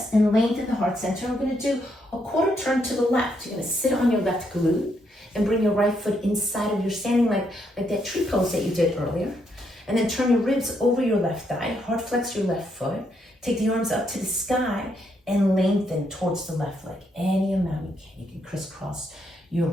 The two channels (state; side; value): normal; both; correlation 0.76